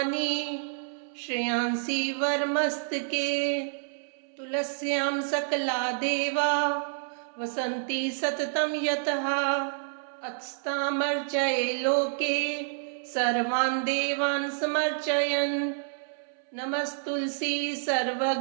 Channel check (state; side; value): silent; left; 59 dB below the other